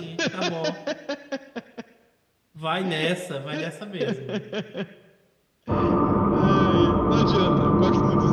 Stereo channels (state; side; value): identical; both; correlation 1.00